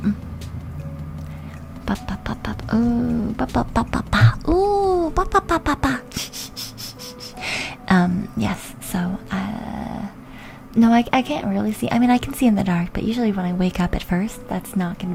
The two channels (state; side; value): identical; both; correlation 1.00